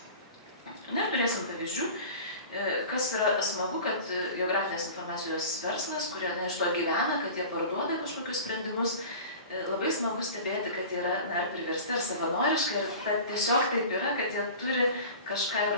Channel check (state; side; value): inverted; both; correlation -0.38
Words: Na ir turėsim pavyzdžių, kas yra smagu, kad geografinės informacijos verslas, kurie iš to gyvena, kad jie parduoda kažkokius sprendimus, labai smagu stebėti, kad jie yra ar priversti, ar savanoriškai, ir tiesiog taip yra, kad jie turi kažką